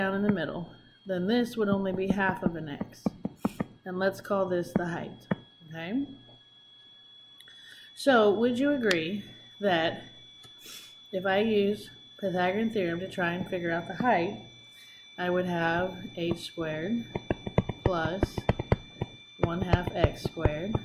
in the middle, then this would only be half of an x. And let's call this the height, okay? So, would you agree that if I use Pythagorean Theorem to try and figure out the height, I would have h squared plus 1/2 x squared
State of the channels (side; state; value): both; identical; correlation 1.00